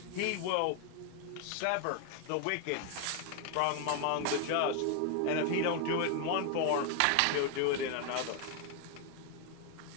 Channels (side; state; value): both; different; correlation 0.01